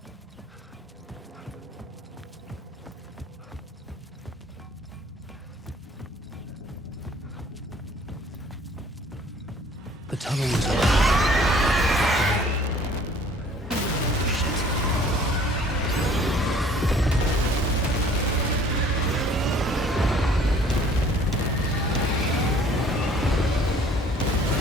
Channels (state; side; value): normal; both; correlation 0.54